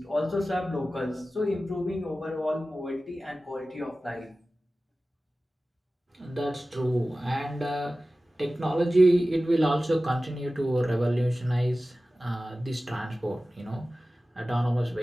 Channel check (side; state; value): both; normal; correlation 0.96